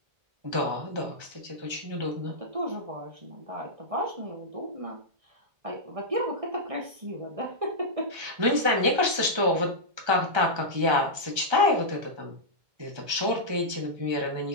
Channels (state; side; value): late; left; 1.3 ms